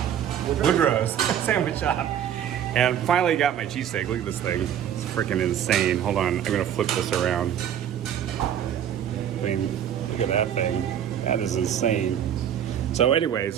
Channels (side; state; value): left; quieter; 9.7 dB